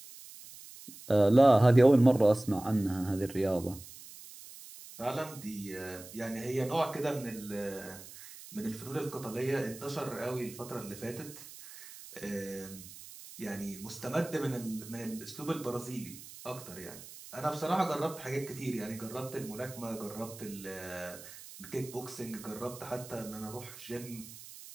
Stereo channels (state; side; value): noise; right; hiss, 16 dB below the sound